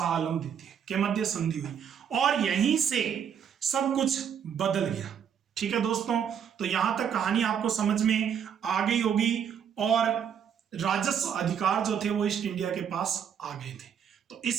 आलम द्वितीय के मध्य संधि हुई। और यहीं से सब कुछ बदल गया, ठीक है दोस्तों। तो यहां तक कहानी आपको समझ में आ गई होगी और राजस्व अधिकार जो थे वो ईस्ट इंडिया के पास आ गए थे। तो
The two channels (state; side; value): quieter; left; 8.1 dB